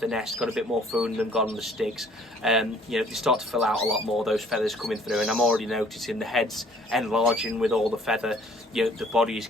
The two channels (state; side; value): normal; both; correlation 0.58